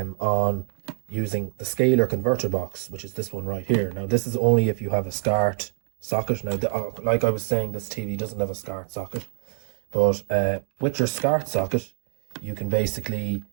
using the scalar converter box, which is this one right here. Now this is only if you have a SCART socket. Now, like I was saying, this TV doesn't have a SCART socket, but with your SCART socket, you can basically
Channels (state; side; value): silent; left; digital silence